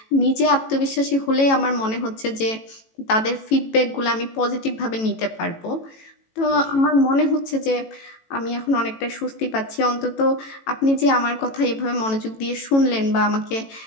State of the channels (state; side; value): late; right; 18 ms